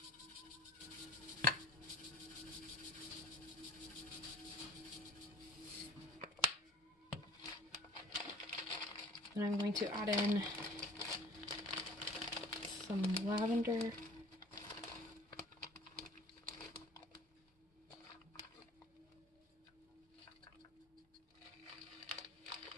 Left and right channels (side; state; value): both; normal; correlation 0.48